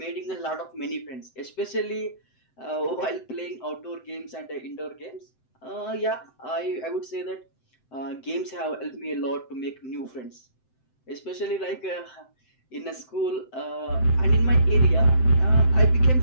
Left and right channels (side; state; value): right; late; 7.8 ms